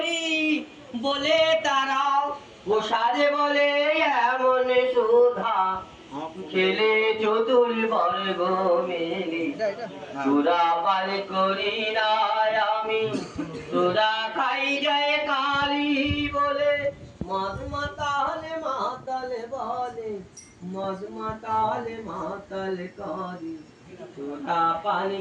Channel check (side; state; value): both; identical; correlation 1.00